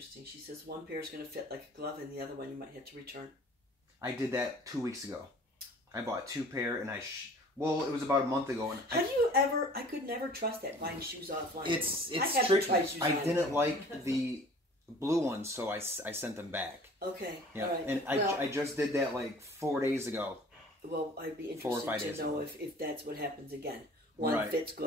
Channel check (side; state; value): both; normal; correlation 0.48